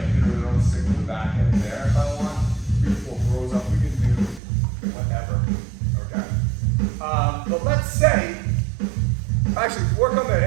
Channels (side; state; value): left; drops out; at 4.4 s